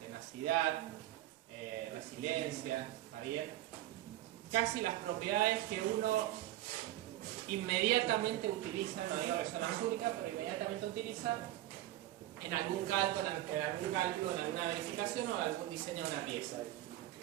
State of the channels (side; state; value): left; quieter; 14.5 dB